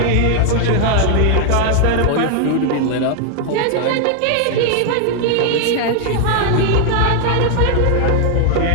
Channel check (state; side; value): different; both; correlation 0.00